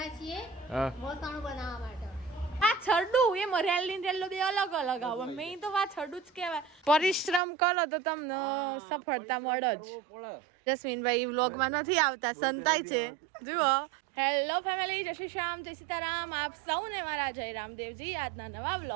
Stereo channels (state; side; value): drops out; left; at 7.4 s